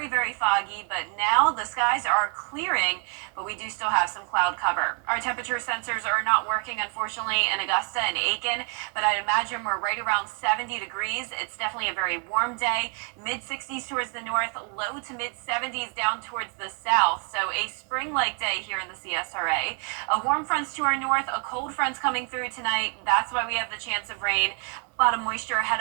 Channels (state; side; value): quieter; left; 38.5 dB